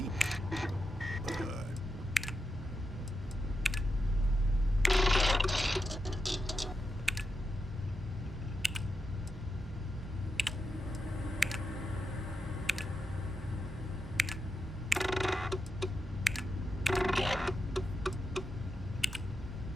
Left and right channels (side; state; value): both; normal; correlation 0.87